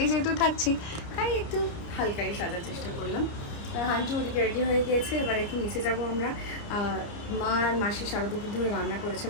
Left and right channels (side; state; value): right; late; 29 ms